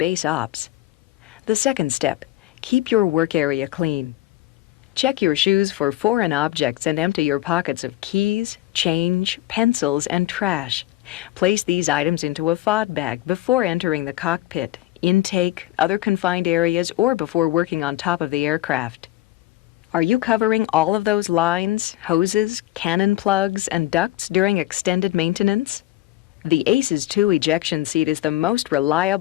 ops. The second step, keep your work area clean. Check your shoes for foreign objects and empty your pockets of keys, change, pencils, and trash. Place these items into a FOD bag before entering the cockpit, intake, other confined areas, or before working on top of the aircraft. Are you covering all of those lines, hoses, cannon plugs, and ducts during extended maintenance? The ACES 2 ejection seat is the most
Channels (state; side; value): quieter; right; 15.9 dB